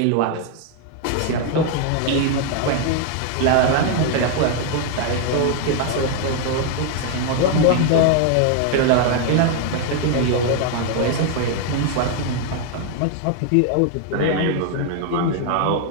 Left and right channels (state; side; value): different; both; correlation 0.00